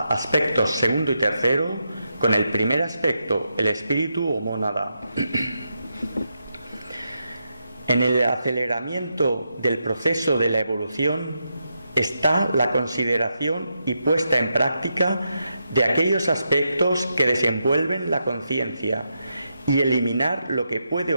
segundo y tercero con el primer aspecto, el espíritu o mónada. En el aceleramiento del proceso de la evolución está la consideración y puesta en práctica de aquellos aspectos que desenvuelven la conciencia y eliminar lo que puede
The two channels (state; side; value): inverted; both; correlation -0.84